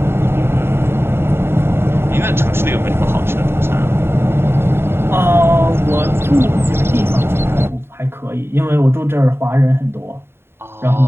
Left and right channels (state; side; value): late; left; 0.11 ms